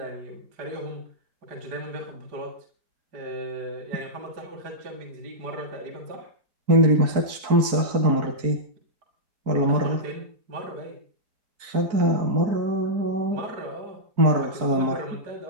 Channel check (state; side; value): late; left; 4.6 ms